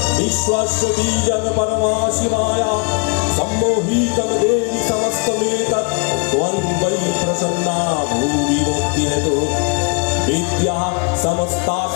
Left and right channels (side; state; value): right; quieter; 35.9 dB